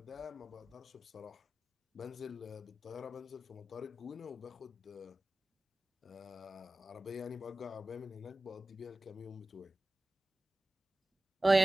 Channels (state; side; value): normal; both; correlation 0.96